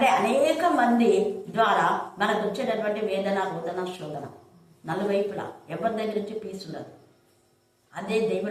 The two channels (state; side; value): identical; both; correlation 1.00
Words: అనేక మంది ద్వారా మనకు వచ్చేటటువంటి వేదన, రోదన, శోధన నలువైపులా ఎవరి దగ్గర నుంచి పీస్ ఉండదు. అదే